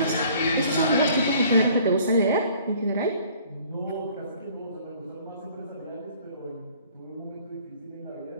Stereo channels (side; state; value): both; inverted; correlation -0.54